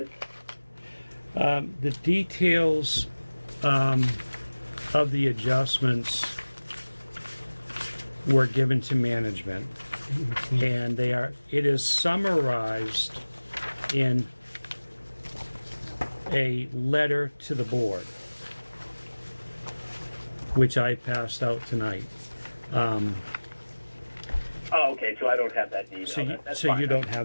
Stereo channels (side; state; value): both; inverted; correlation -1.00